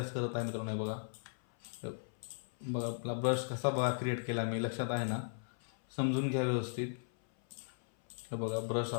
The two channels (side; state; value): right; silent; 53 dB below the other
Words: करत आहे मित्रांनो. हे बघा, बघा आपला ब्रश कसा बघा क्रिएट केला मी, लक्षात आहे ना, समजून घ्या व्यवस्थित. हे बघा ब्रश